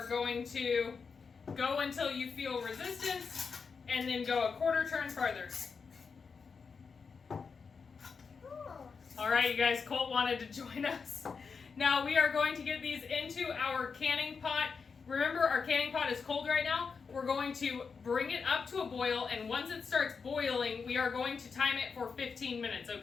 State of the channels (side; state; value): right; quieter; 5.4 dB